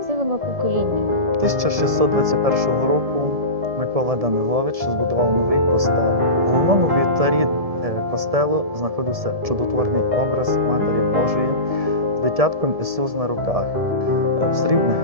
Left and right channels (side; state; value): left; late; 1.7 ms